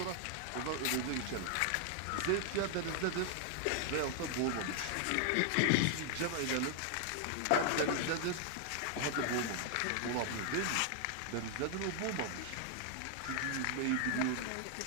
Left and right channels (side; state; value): both; different; correlation 0.00